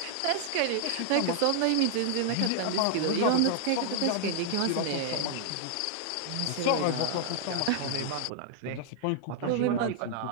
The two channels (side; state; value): both; different; correlation 0.00